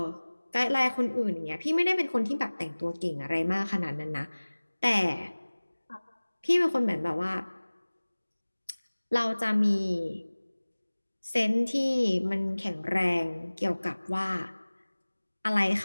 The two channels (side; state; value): both; inverted; correlation -1.00